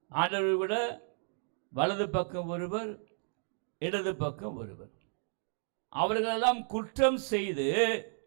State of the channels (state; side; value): silent; left; 56 dB below the other